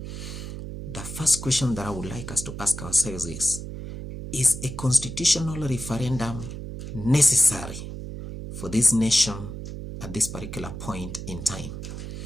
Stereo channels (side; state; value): right; noise; hum, 8 dB below the sound